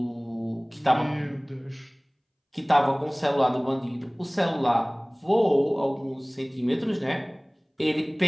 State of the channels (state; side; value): identical; both; correlation 1.00